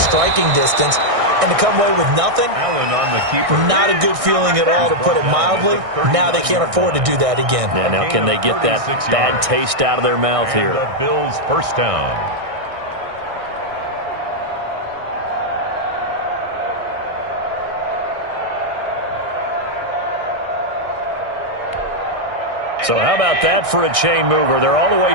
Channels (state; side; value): late; left; 1.6 ms